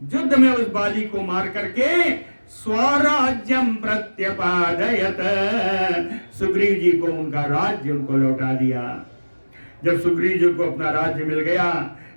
में उस बाली को मार करके स्वराज्यम प्रत्यपादयत, सुग्रीव जी को उनका राज्य उनको लौटा दिया। जब सुग्रीव जी को अपना राज्य मिल गया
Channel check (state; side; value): inverted; both; correlation -1.00